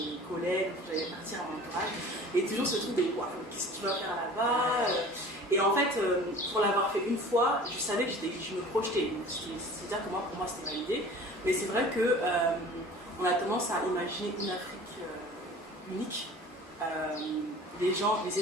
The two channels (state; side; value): normal; both; correlation 0.43